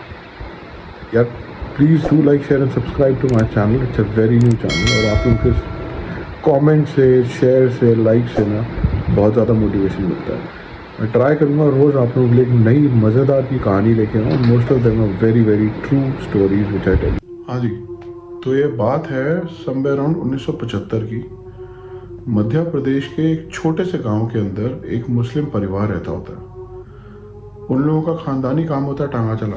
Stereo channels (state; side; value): identical; both; correlation 1.00